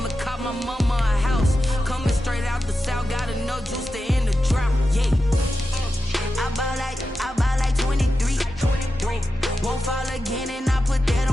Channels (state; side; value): normal; both; correlation 0.91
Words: cop my mama a house. Coming straight out the south, gotta know juice to end the drought. Yeah, I buy like 23. Won't fall again, and I put that